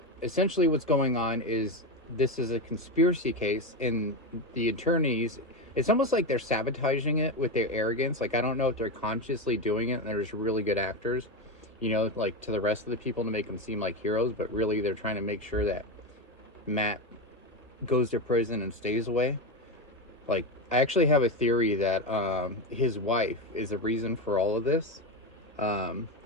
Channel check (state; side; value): normal; both; correlation 0.15